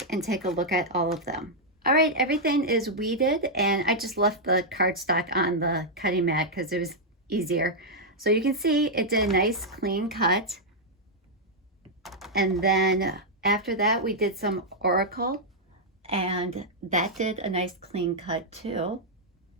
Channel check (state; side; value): normal; both; correlation -0.05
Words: and take a look at all of them. All right, everything is weeded and I just left the cardstock on the cutting mat because it was easier. So you can see it did a nice clean cut. And then after that we did some Oracle and that did a nice clean cut too.